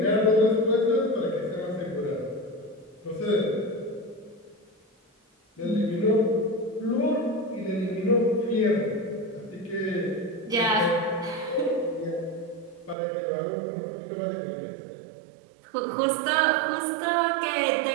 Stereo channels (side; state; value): left; drops out; at 13.0 s